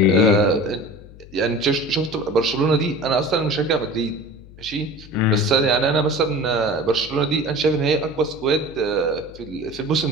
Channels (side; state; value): left; noise; hum, 20 dB below the sound